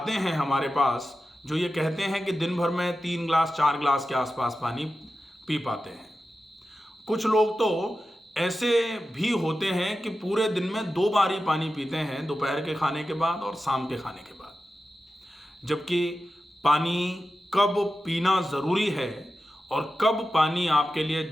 हैं हमारे पास जो ये कहते हैं कि दिन भर में 3 गिलास 4 गिलास के आसपास पानी पी पाते हैं। कुछ लोग तो ऐसे भी होते हैं कि पूरे दिन में 2 बार ही पानी पीते हैं, दोपहर के खाने के बाद और शाम के खाने के बाद। जबकि पानी कब पीना ज़रूरी है और कब पानी आपके लिए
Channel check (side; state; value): both; normal; correlation 0.92